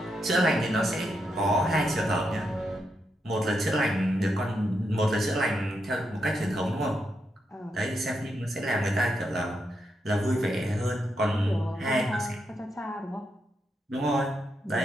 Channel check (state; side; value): normal; both; correlation 0.82